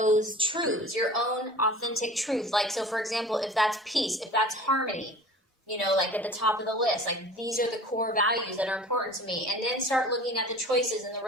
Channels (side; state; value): both; normal; correlation 0.42